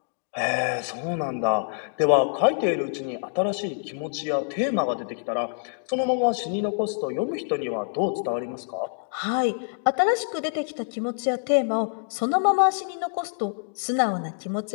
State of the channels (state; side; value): silent; right; digital silence